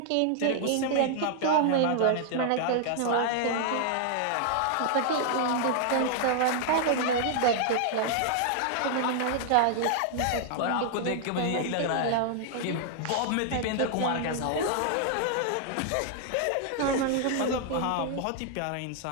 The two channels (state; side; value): different; both; correlation 0.00